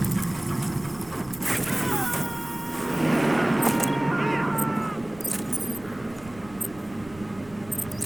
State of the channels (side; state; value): right; noise; rumble, 21 dB below the sound